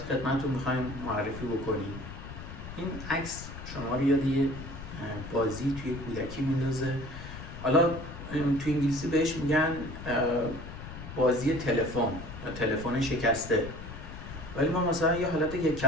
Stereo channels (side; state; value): left; noise; rumble, 11 dB below the sound